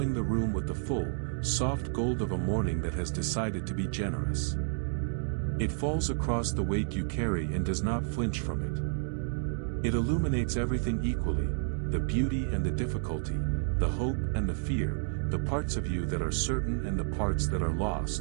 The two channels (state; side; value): silent; left; digital silence